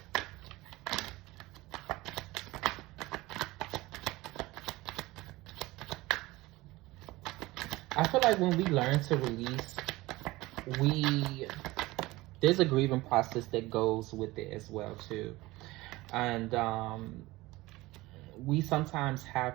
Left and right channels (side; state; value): left; quieter; 19.8 dB